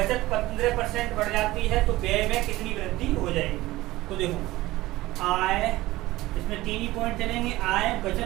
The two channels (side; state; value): left; quieter; 18.0 dB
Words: 15% बढ़ जाती है, तो व्यय में कितनी वृद्धि हो जाएगी। तो देखो आय, इसमें 3 ही पॉइंट चलेंगे, आय,